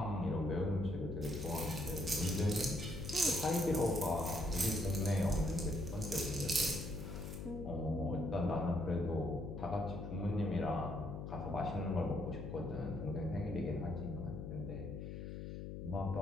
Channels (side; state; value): left; noise; hum, 7 dB below the sound